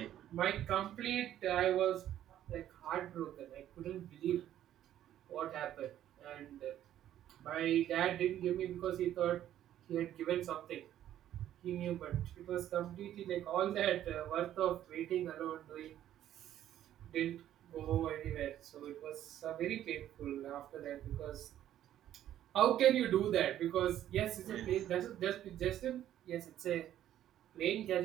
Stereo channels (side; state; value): left; quieter; 11.8 dB